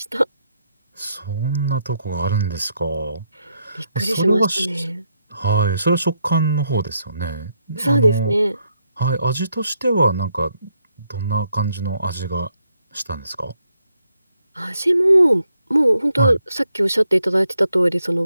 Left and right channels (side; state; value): both; inverted; correlation -0.78